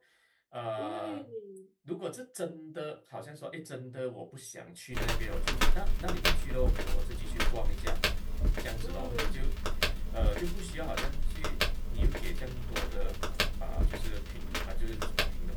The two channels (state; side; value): identical; both; correlation 1.00